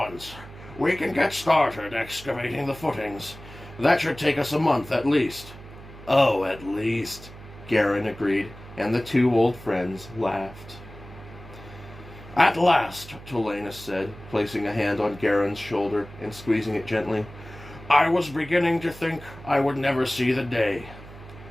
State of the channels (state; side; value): noise; right; hum, 17 dB below the sound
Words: We can get started excavating the footings. That should take us a month at least." "Oh, at least," Garin agreed, and the two old friends laughed. "At last," Tolanus said, placing a hand on Garin's shoulder and squeezing it gently. "I was beginning to think I would never see the day."